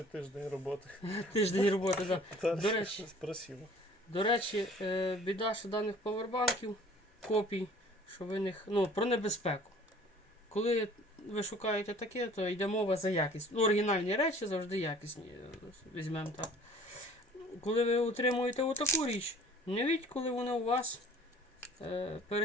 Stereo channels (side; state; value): both; normal; correlation 0.50